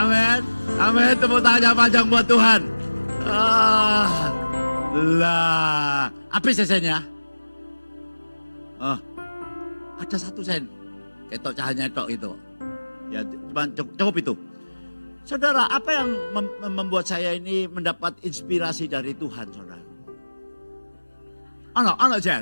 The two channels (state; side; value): inverted; both; correlation -1.00